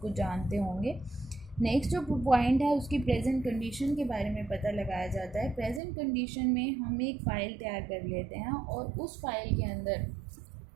कुछ जानते होंगे। नेक्स्ट जो पॉइंट है उसकी प्रेजेंट कंडीशन के बारे में पता लगाया जाता है। प्रेजेंट कंडीशन में हम एक फ़ाइल तैयार कर लेते हैं और उस फाइल के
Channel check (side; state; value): left; drops out; at 5.8 s